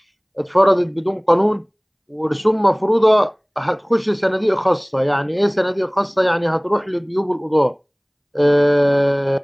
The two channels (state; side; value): identical; both; correlation 1.00